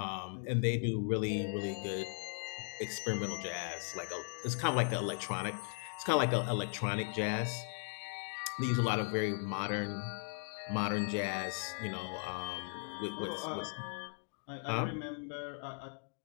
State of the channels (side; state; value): right; silent; 53 dB below the other